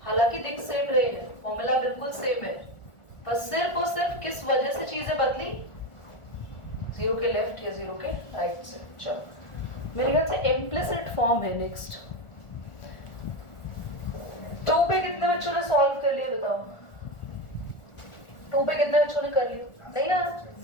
हालांकि दिख सेम रहे हैं, फॉर्मूला बिल्कुल सेम है, पर सिर्फ और सिर्फ किस वजह से चीजें बदली? 0 के लेफ्ट या 0 के राइट से। चलो मेरे ख्याल से इम्प्लिसिट फॉर्म है नेक्स्ट। 2 पे कितने बच्चों ने सॉल्व कर लिया बताओ? 2 पे कितने बच्चों ने कर लिया? नहीं यार,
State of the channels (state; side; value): late; right; 1.4 ms